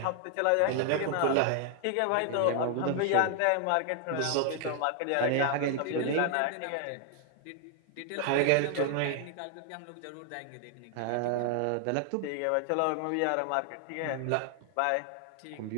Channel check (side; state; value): both; different; correlation 0.00